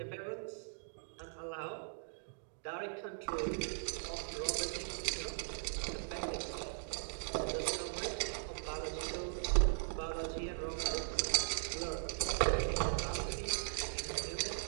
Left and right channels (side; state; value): left; silent; digital silence